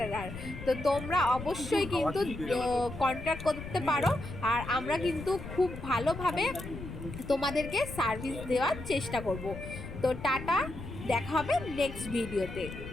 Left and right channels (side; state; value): left; noise; rumble, 10 dB below the sound